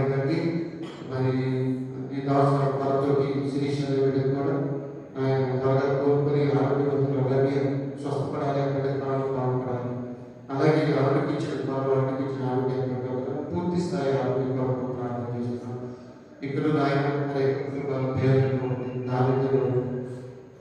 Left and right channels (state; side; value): identical; both; correlation 1.00